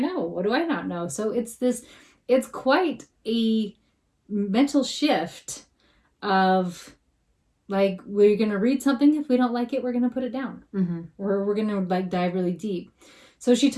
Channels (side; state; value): both; identical; correlation 1.00